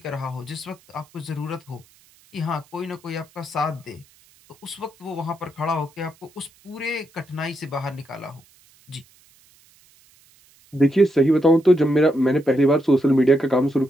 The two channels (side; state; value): right; noise; hiss, 30 dB below the sound